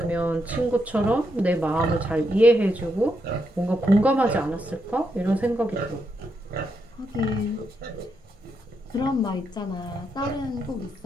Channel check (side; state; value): both; normal; correlation 0.81